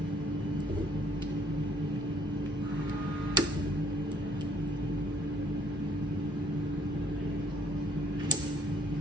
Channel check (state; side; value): normal; both; correlation 0.62